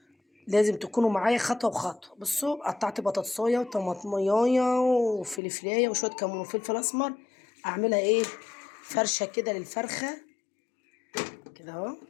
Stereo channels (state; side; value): drops out; right; at 5.4 s